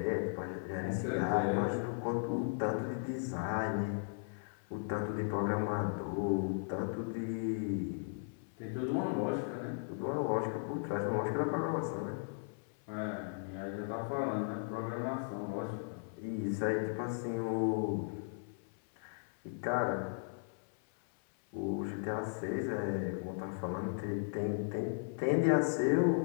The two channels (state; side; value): silent; right; 53 dB below the other